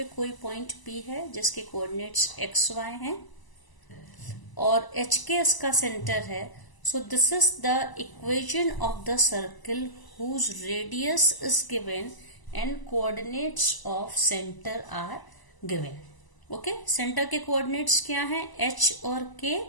कोई पॉइंट P है जिसके कोऑर्डिनेट्स x y हैं और HK इसका सेंटर है। So this is the equation of the circle whose radius is given and coordinates of center are given। Okay, centre के कोऑर्डिनेट्स क्या हैं, H और K,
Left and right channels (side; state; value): right; late; 1.0 ms